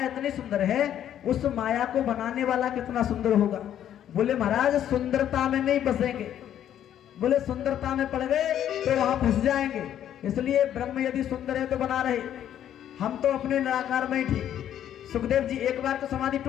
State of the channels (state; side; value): quieter; right; 10.6 dB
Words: इतनी सुंदर है उस माया को बनाने वाला कितना सुंदर होगा। बोले महाराज सुंदरता में नहीं फंसेंगे, बोले सुंदरता में पड़ गए तो वहां फंस जाएंगे। इसलिए ब्रह्म यदि सुंदर है तो बना रहे, हम तो अपने निराकार में ही ठीक। सुखदेव जी एक बार तो समाधि